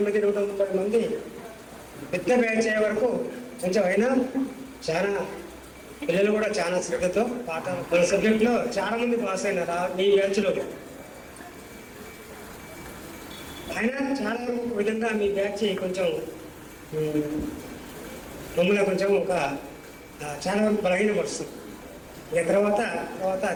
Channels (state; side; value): identical; both; correlation 1.00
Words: 130 మంది పెద్ద బ్యాచ్ అయ్యే వరకు కొంచెం అయినా చాలా పిల్లలు కూడా చాలా శ్రద్ధతో పాఠాలు మన సబ్జెక్ట్లో చాలా మంది పాస్ అయినారు మీ బ్యాచ్లో. అయినా చాలా వరకు ఒక విధంగా మీ బ్యాచ్ కొంచెం మమ్మల్ని కొంచెం ఒక చాలా వరకు బలహీనపరుస్తుంది. ఇక తర్వాత